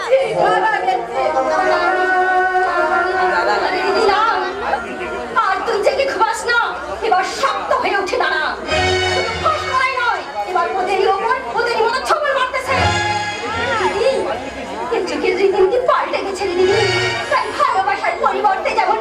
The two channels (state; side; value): identical; both; correlation 1.00